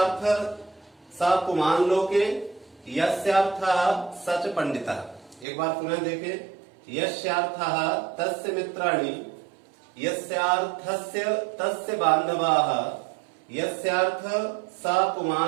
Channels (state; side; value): drops out; left; at 5.5 s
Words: स पुमान् लोके, यस्यार्थः स च पंडितः। एक बार पुनः देखें। यस्यार्थः तस्य मित्राणि, यस्यार्थस्य तस्य बान्धवाः, यस्यार्थ स